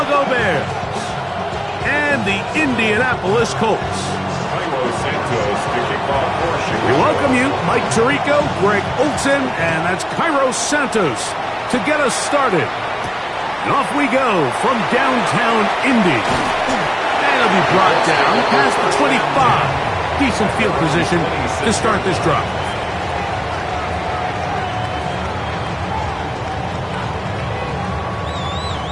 Bears and the Indianapolis Colts. We welcome you, Mike Tirico, Greg Olson, and that's Cairo Santos to get us started. And off we go from downtown Indy. And it'll be brought down past the 25. Decent field position to start this drive.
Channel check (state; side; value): identical; both; correlation 1.00